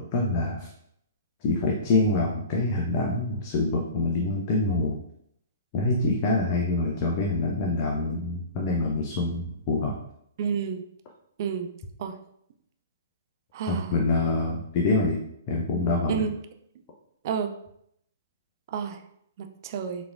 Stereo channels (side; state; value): both; inverted; correlation -0.34